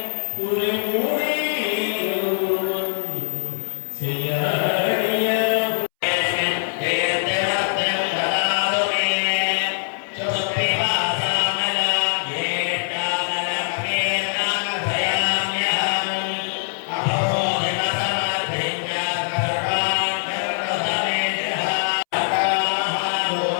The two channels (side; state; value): right; silent; 64 dB below the other